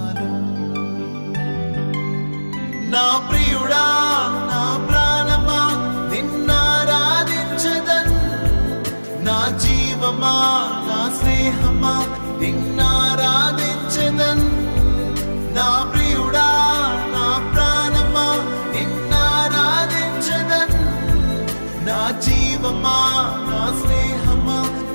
నా ప్రియుడా నా ప్రాణమా నిన్నారాధించదన్, నా జీవమా నా స్నేహమా నిన్నారాధించదన్. నా ప్రియుడా నా ప్రాణమా నిన్నారాధించదన్, నా జీవమా నా స్నేహమా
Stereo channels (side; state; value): both; inverted; correlation -1.00